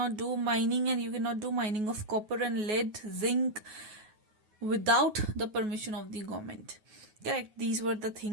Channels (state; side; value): late; left; 9.4 ms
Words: do mining, and you cannot do mining of copper and lead, zinc, without the permission of the government. Correct. These were the